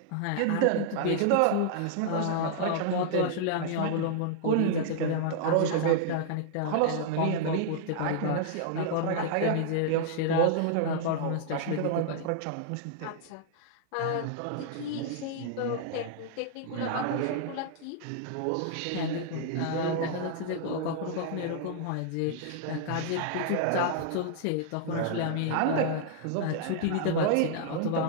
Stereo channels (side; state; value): both; different; correlation -0.01